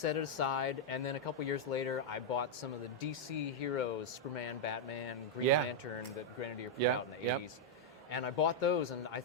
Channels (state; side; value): normal; both; correlation -0.03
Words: it aside, and then a couple years later, I bought some of the DC heroes, Superman, Batman, Green Yeah. Lantern, that Grenadier put Yeah, out in the yep. 80s. And I bought those, and I